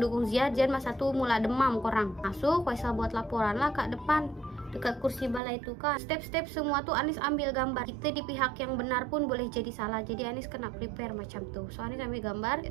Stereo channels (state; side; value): drops out; left; at 5.4 s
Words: dukung Ziad. Ziad masa tuh mula demam korang. Masuk, Faisal buat laporan lah kat depan, dekat kursi balai itu kan. Step-step semua tuh Anis ambil gambar. Kita di pihak yang benar pun boleh jadi salah. Jadi Anis kena prepare macam tuh. So Anis ambil gambar,